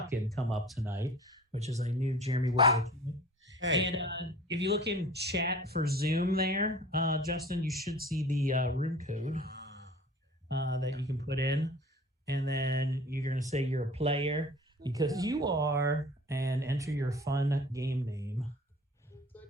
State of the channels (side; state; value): both; normal; correlation 0.44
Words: come up tonight, which is a new Jeremy Woodworth. Hey. And if you look in chat for Zoom there, Justin, you should see the room code that you can put in. And then you're going to say you're a player because you are, and enter your fun game name.